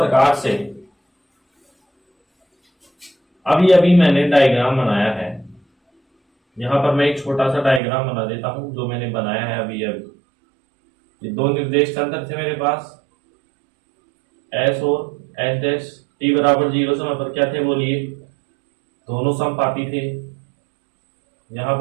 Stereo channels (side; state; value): left; drops out; at 7.8 s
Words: से अभी मैंने डायग्राम बनाया है, यहां पर मैं एक छोटा सा डायग्राम बना देता हूं जो मैंने बनाया है अभी। ये दो निर्देश तंत्र थे मेरे पास एस और एस डैश। टी बराबर 0 समय पर क्या थे बोलिए, दोनों समपाती थे। यहां